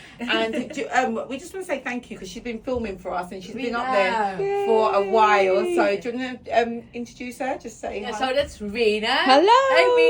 And we just want to say thank you because she's been filming for us and she's been up there for a while. So do you want to introduce her? Just say hi. So that's Rena. Hello. Hey,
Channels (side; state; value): both; identical; correlation 1.00